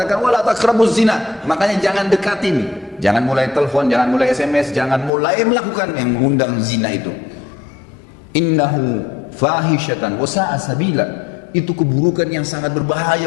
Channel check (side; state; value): right; drops out; at 5.1 s